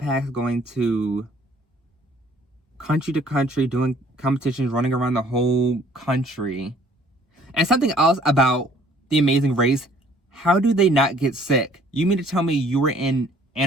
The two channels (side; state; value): both; normal; correlation 0.57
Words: going to country, doing competitions, running around the whole country. And something else about The Amazing Race, how do they not get sick? You mean to tell me you were in